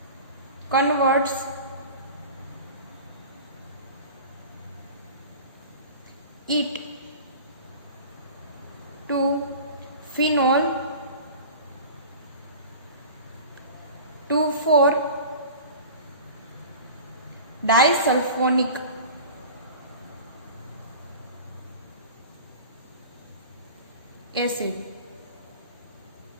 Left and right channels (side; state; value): both; inverted; correlation -0.38